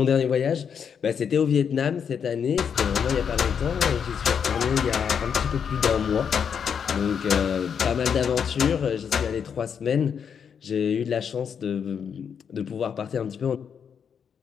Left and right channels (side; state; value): right; quieter; 7.2 dB